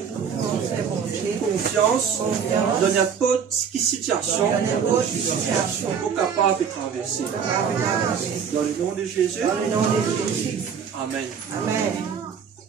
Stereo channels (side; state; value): left; quieter; 7.0 dB